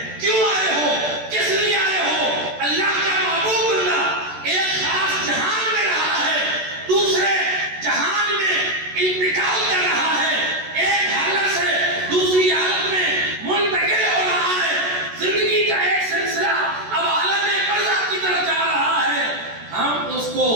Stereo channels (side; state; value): left; late; 14 ms